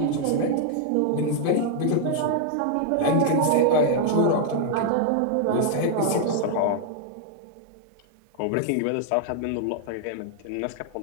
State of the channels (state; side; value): different; both; correlation -0.01